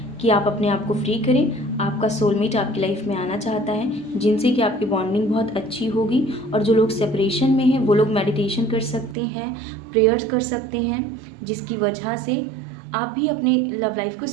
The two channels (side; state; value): left; drops out; at 9.2 s